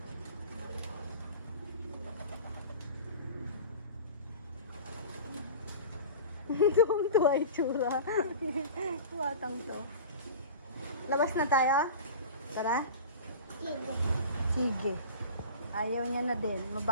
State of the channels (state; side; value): inverted; both; correlation -0.36